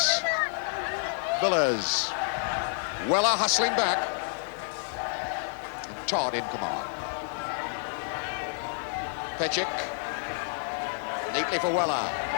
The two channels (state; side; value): silent; right; digital silence